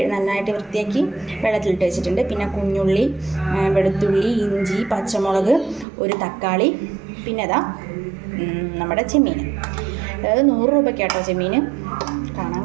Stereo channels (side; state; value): left; drops out; at 5.9 s